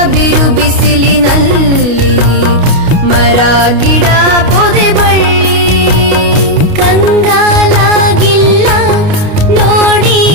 ಬಿರು ಬಿಸಿಲಿನಲ್ಲಿ ಮರ ಗಿಡ ಪೊದೆ ಬಳ್ಳಿ. ಕಂಗಾಲಾಗಿಲ್ಲ ನೋಡಿ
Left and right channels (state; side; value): late; left; 29 ms